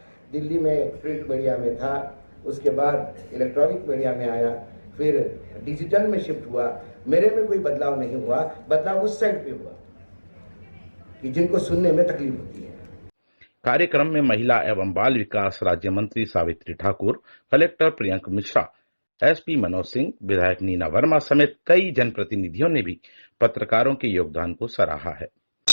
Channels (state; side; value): inverted; both; correlation -1.00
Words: दिल्ली में प्रिंट मीडिया में था, उसके बाद इलेक्ट्रॉनिक मीडिया में आया, फिर डिजिटल में शिफ्ट हुआ। मेरे में कोई बदलाव नहीं हुआ, बदलाव उस साइड पे हुआ कि जिनको सुनने में तकलीफ होती है। कार्यक्रम में महिला एवं बाल विकास राज्य मंत्री सावित्री ठाकुर, कलेक्टर प्रियंक मिश्रा, एसपी मनोज सिंह, विधायक नीना वर्मा समेत कई जनप्रतिनिधियों ने भी पत्रकारों के योगदान को सराहा है।